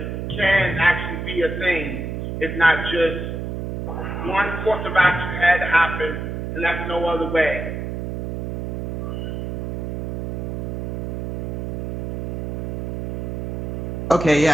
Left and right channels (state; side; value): noise; right; hum, 4 dB below the sound